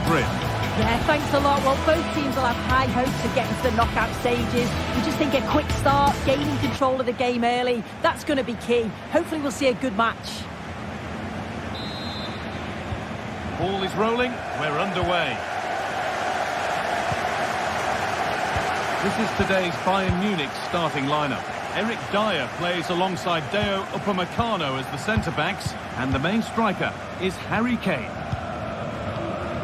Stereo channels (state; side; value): identical; both; correlation 1.00